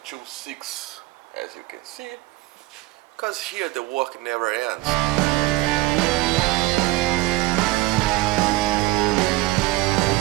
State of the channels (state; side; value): quieter; left; 19.6 dB